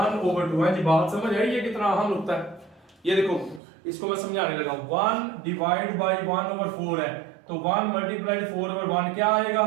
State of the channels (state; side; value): drops out; left; at 3.6 s